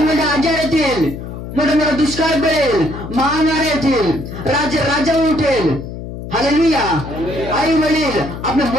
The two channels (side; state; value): left; noise; hum, 10 dB below the sound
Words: आजार येतील, मोठे मोठे दुष्काळ पडेल, महामारी येतील, राजा उठेल. हालेलुया. आई वडील आपल्या